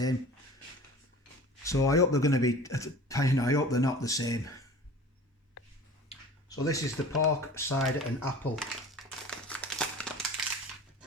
So I hope they're going to be, I hope they're not the same. So this is the pork, cider and apple.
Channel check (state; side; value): normal; both; correlation 0.41